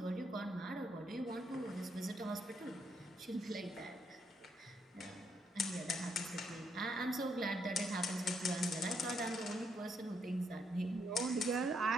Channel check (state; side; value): normal; both; correlation 0.75